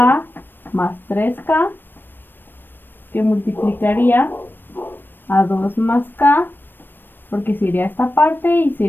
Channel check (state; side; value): late; right; 0.095 ms